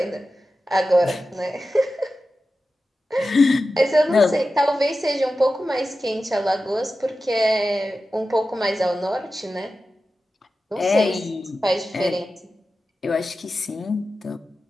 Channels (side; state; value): both; normal; correlation 0.93